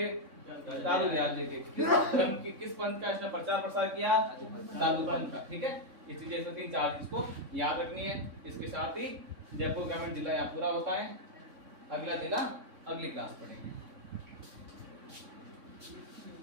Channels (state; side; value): late; left; 3.6 ms